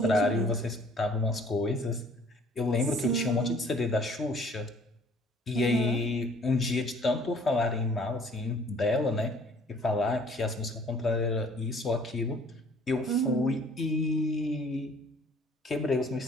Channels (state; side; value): normal; both; correlation 0.55